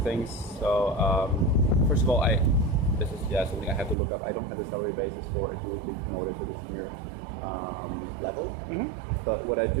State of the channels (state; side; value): drops out; left; at 4.0 s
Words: So first of all, this is something I have to look up. I don't have the salary basis for if you would be promoted to the senior level. But what I